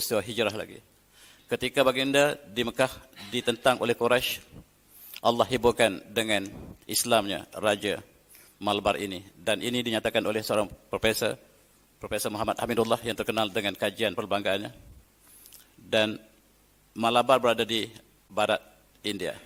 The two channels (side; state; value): both; identical; correlation 1.00